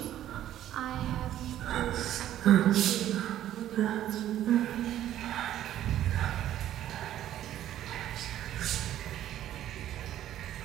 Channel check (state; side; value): quieter; left; 12.2 dB